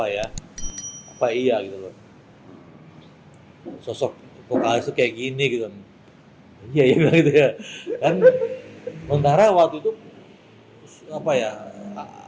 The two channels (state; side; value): identical; both; correlation 1.00